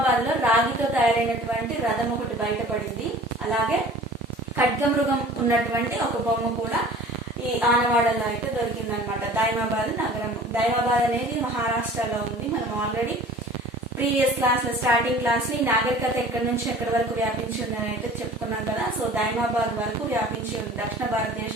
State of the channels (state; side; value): normal; both; correlation 0.45